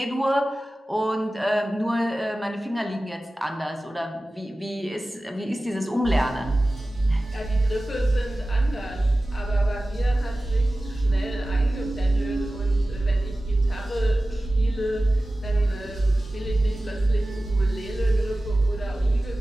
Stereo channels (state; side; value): normal; both; correlation 0.96